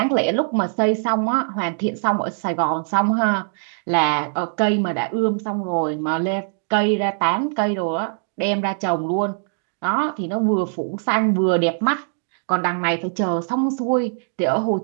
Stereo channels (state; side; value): silent; left; digital silence